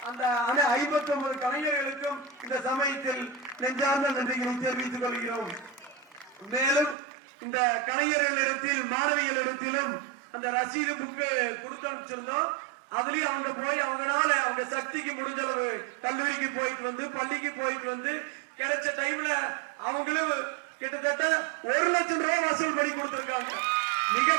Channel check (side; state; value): left; drops out; at 7.0 s